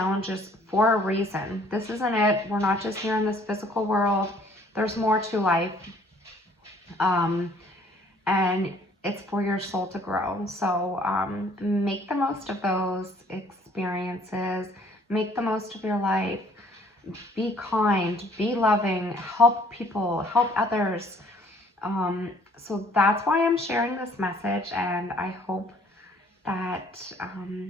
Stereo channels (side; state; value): both; normal; correlation 0.59